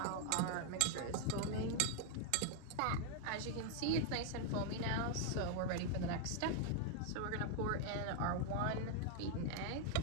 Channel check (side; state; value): both; different; correlation 0.00